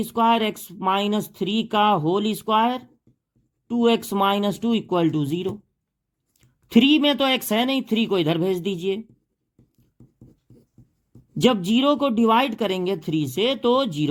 स्क्वायर, x-3 का होल स्क्वायर, 2x - 2 = 0। 3 में तो x है नहीं, 3 को इधर भेज दीजिए। जब 0 को डिवाइड करेंगे 3 से तो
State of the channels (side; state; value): both; identical; correlation 1.00